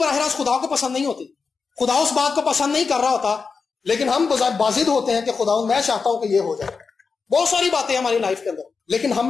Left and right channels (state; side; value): quieter; right; 5.0 dB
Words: راست خدا کو پسند نہیں ہوتی. خدا اس بات کو پسند نہیں کر رہا ہوتا، لیکن ہم بازد ہوتے ہیں کہ خدا میں چاہتا ہوں کہ یہ ہو جائے. بہت ساری باتیں ہماری لائف کے اندر، لیکن